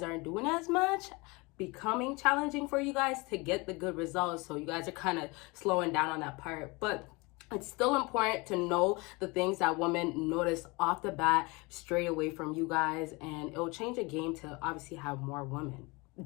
aren't doing as much, becoming challenging for you guys to get the good results. So you guys are kind of slowing down on that part. But it's still important to know the things that women notice off the bat straight away from you guys, and it'll change the game to obviously have more women.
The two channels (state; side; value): quieter; right; 25.9 dB